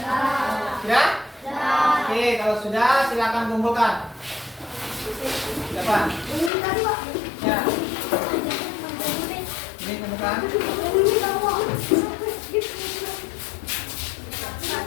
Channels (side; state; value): right; drops out; at 6.5 s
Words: Sudah? Oke, kalau sudah silakan kumpulkan. Siapa? Ya. Ini kumpulkan.